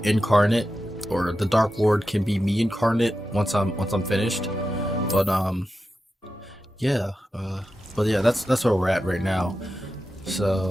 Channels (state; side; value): normal; both; correlation 0.91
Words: incarnate, or the Dark Lord can be me incarnate once I'm finished. But yeah, but yeah, that's where we're at right now.